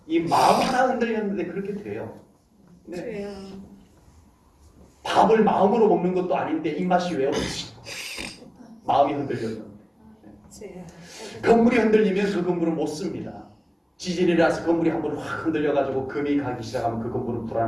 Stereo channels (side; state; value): both; identical; correlation 1.00